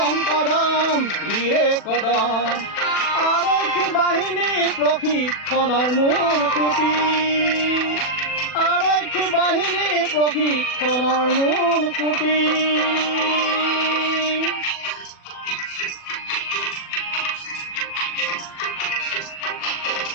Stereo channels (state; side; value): late; right; 40 ms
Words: কদম ধীৰে কদম। আৰক্ষী বাহিনী প্ৰশিক্ষণৰ মূল খুঁটি, আৰক্ষী বাহিনী প্ৰশিক্ষণৰ মূল খুঁটি।